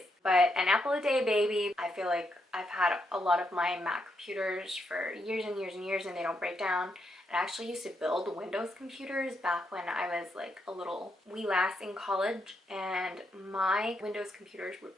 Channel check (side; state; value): both; normal; correlation 0.79